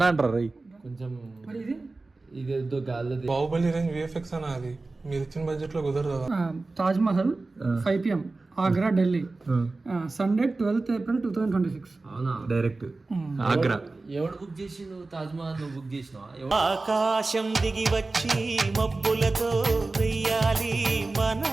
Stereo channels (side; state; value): left; quieter; 3.4 dB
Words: అంటారు రై కొంచెం ఇది గాలి బాహుబలి రేంజ్ విఎఫ్ఎక్స్ అన్న అది మీరు ఇచ్చిన బడ్జెట్ లో కుదరదు. Taj Mahal 5 PM Agra Delhi Sunday 12th April 2026. అవునా డైరెక్ట్ ఆగ్రా. ఎవడు బుక్ చేసిండు తాజ్ మహల్? నువ్వు బుక్ చేసినావా? ఆకాశం దిగి వచ్చి మబ్బులతో వెయ్యాలి మన